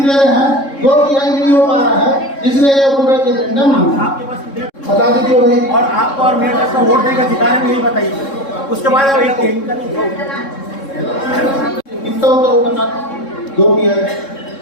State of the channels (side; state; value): right; late; 3.7 ms